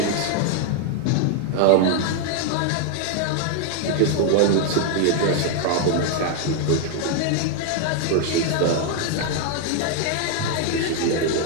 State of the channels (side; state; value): both; different; correlation 0.00